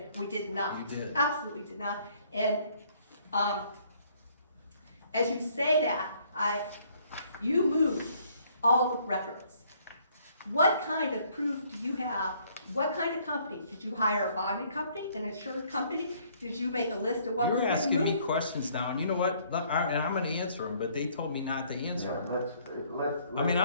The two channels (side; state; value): both; inverted; correlation -0.63